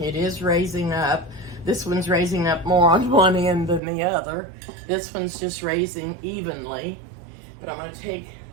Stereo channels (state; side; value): drops out; left; at 3.8 s